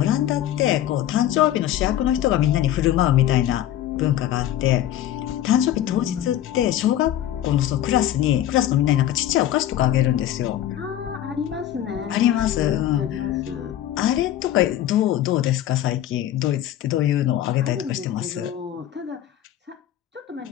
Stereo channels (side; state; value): right; quieter; 12.1 dB